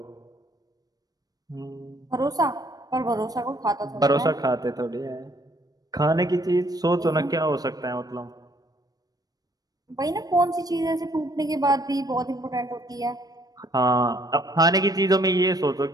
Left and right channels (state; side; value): late; left; 0.18 ms